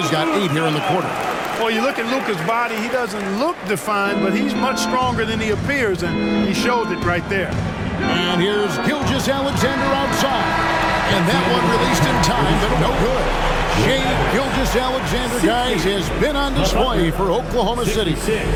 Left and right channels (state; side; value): identical; both; correlation 1.00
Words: got 8 here in the quarter. Well, you look at Luka's body, he doesn't look defined, but he's much stronger than he appears, and he showed it right there. And here's Gilgeous-Alexander outside. And that one released in time, but no good. Shai Gilgeous-Alexander, guys, has been on display for Oklahoma City.